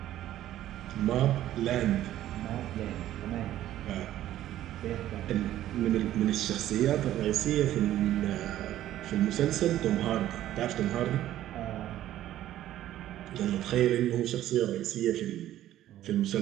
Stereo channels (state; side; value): quieter; left; 13.1 dB